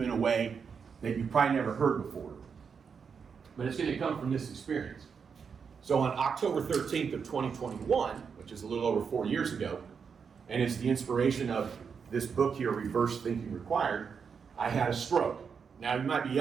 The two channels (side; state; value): left; quieter; 6.2 dB